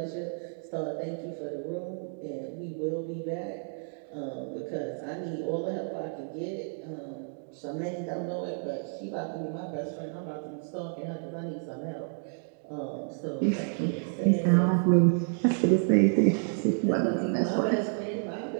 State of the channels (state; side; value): silent; left; 58 dB below the other